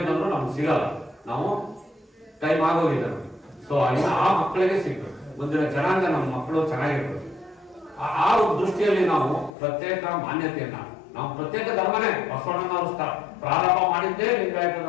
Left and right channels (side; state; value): right; drops out; at 9.5 s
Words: ಬಂದ್ರು ನಮ್ಗೆ ಸಿಗಲ್ಲ. ನಾವು ಟೈಮ್ ಆಗೋಗಿದೆ. ಸೊ ಆ ಮಕ್ಕಳಿಗೆ ಸಿಗ್ಬೇಕು, ಮುಂದಿನ ಜನಾಂಗ ನಮ್ಮ ಮಕ್ಕಳು ಚೆನ್ನಾಗಿರ್ಬೇಕು. ಆ ದೃಷ್ಟಿಯಲ್ಲಿ ನಾವು ಪ್ರತ್ಯೇಕ ಮಾನ್ಯತೆಯನ್ನ, ನಾವು ಪ್ರತ್ಯೇಕ ಧರ್ಮನೇ, ಬಸವಣ್ಣನವರು ಪ್ರಾರಂಭ ಮಾಡಿದ್ದೇ ಲಿಂಗಾಯತ